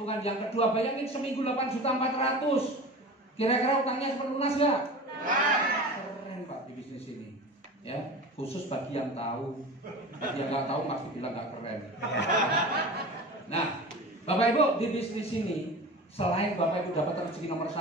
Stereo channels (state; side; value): normal; both; correlation 0.34